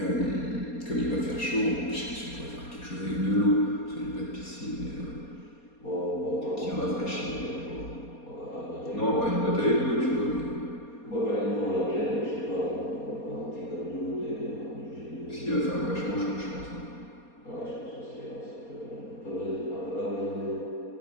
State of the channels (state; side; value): late; right; 4.2 ms